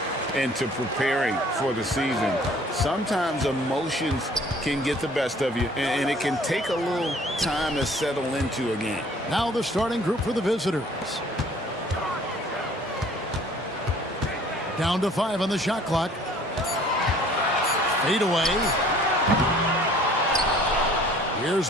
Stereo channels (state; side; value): normal; both; correlation 0.54